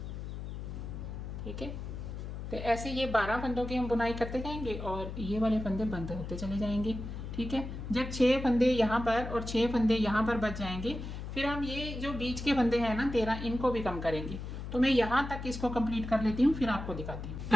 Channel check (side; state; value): left; noise; hum, 7 dB below the sound